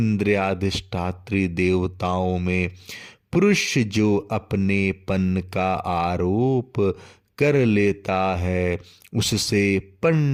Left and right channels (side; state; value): both; identical; correlation 1.00